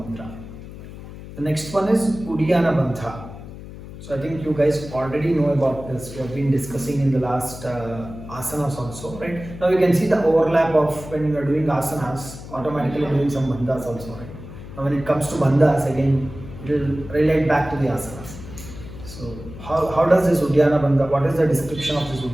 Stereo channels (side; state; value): left; noise; hum, 13 dB below the sound